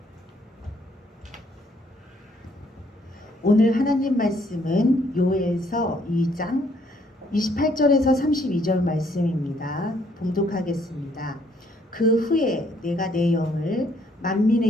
오늘 하나님 말씀은 요엘서 2장 28절에서 32절 말씀입니다. 봉독하겠습니다. 그 후에 내가 내 영을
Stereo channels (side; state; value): both; normal; correlation 0.67